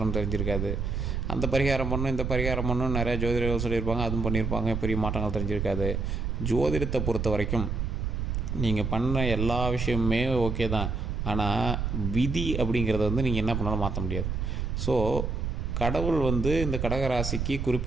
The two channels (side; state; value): right; noise; rumble, 2 dB below the sound